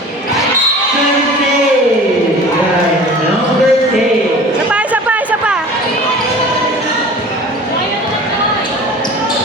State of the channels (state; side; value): normal; both; correlation 0.41